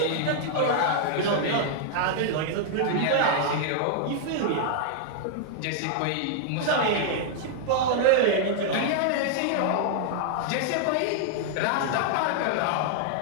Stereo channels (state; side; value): different; both; correlation -0.01